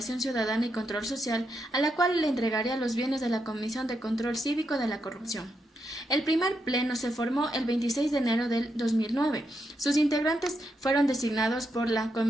Ciudadana y Control Social, a la cual le entregaría los bienes de la Comisión de Control Cívico de la Corrupción. El primer pleno se formó el 26 de enero del 2009. Sus integrantes fueron designados por la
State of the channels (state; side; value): normal; both; correlation 0.82